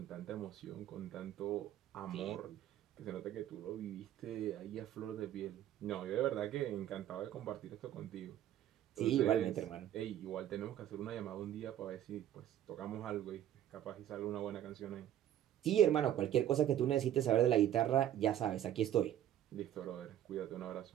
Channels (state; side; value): quieter; left; 11.5 dB